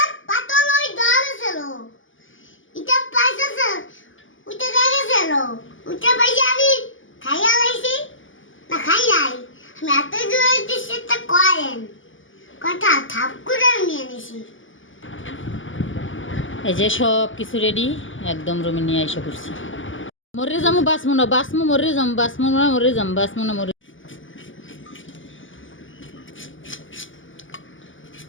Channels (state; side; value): late; right; 0.57 ms